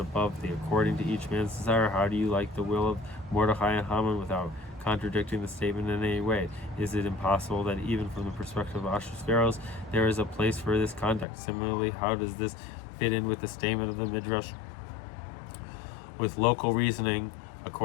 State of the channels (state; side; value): drops out; right; at 11.2 s